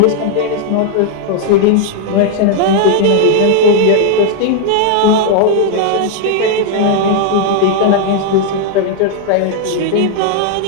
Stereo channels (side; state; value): both; different; correlation 0.00